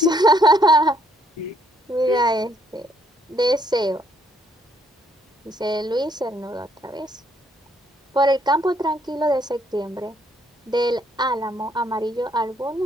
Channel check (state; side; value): normal; both; correlation 0.68